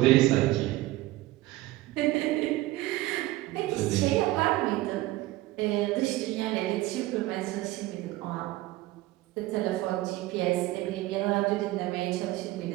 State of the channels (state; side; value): quieter; left; 17.8 dB